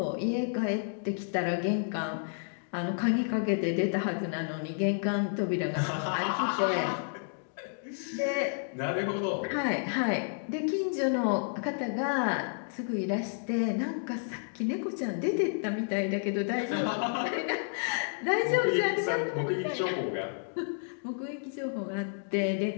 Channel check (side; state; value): right; silent; digital silence